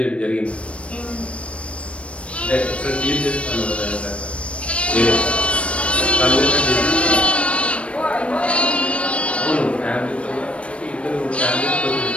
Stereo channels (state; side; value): late; right; 0.061 ms